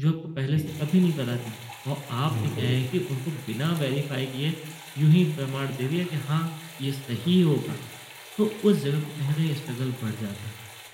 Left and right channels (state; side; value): identical; both; correlation 1.00